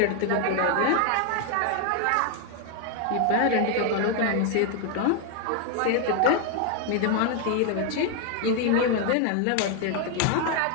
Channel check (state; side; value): different; both; correlation 0.01